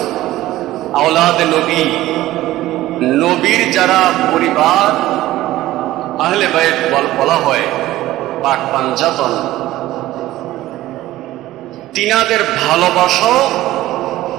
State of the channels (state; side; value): quieter; left; 15.8 dB